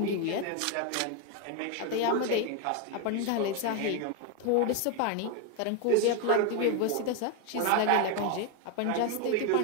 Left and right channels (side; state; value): both; different; correlation 0.01